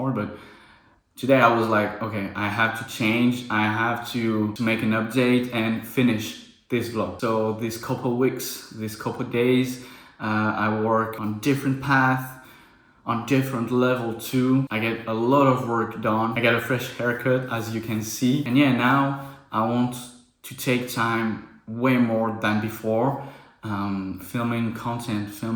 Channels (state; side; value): identical; both; correlation 1.00